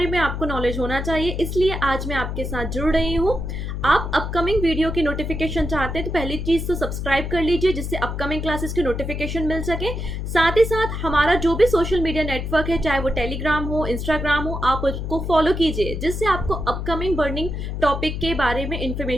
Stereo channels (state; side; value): noise; left; hum, 4 dB below the sound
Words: में आपको नॉलेज होना चाहिए, इसलिए आज मैं आपके साथ जुड़ रही हूँ। आप अपकमिंग वीडियो की नोटिफिकेशन चाहते हैं तो पहली चीज़ तो सब्सक्राइब कर लीजिए जिससे अपकमिंग क्लासेस की नोटिफिकेशन मिल सके। साथ ही साथ हमारा जो भी सोशल मीडिया नेटवर्क है, चाहे वो टेलीग्राम हो, इंस्टाग्राम हो, आप उसको फॉलो कीजिए जिससे आपको अपकमिंग बर्निंग टॉपिक के बारे में